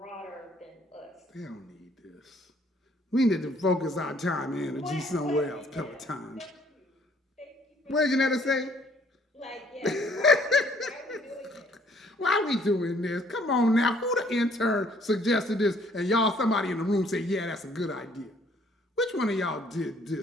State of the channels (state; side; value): normal; both; correlation 0.62